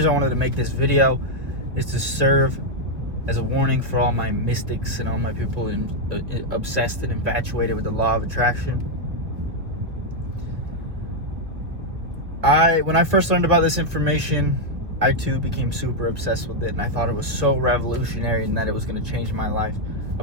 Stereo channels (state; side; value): late; left; 1.6 ms